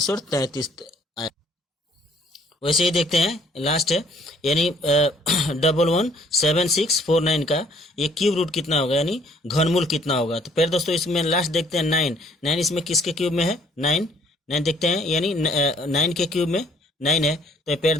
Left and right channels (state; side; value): normal; both; correlation 0.61